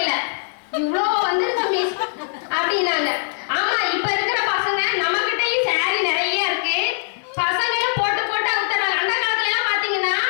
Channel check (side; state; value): right; silent; 63 dB below the other